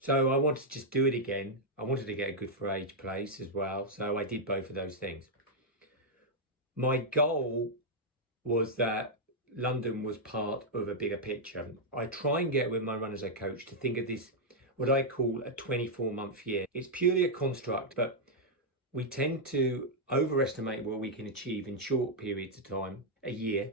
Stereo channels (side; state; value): both; normal; correlation -0.04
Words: I wanted to just do it again. I wanted to get a Good for Age place as well. So I did both of those things. My goal was that London was part of a bigger picture. I try and get with my runners I coach to think of this, what I call a 24-month year. It's purely a construct, but we tend to overestimate what we can achieve in short periods of time. A year